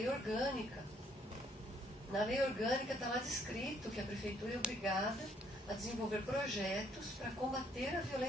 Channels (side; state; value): both; normal; correlation 0.67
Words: orgânica. Na lei orgânica está lá descrito que a prefeitura é obrigada a desenvolver projetos para combater a